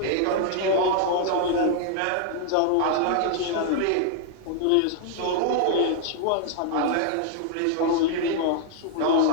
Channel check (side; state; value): both; different; correlation 0.00